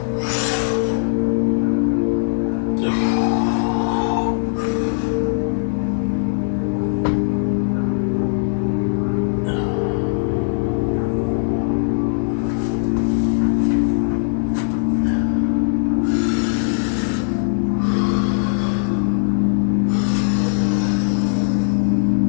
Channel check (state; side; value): silent; right; digital silence